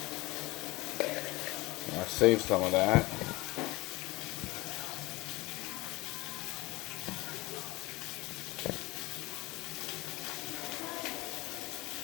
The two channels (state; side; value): quieter; right; 21.9 dB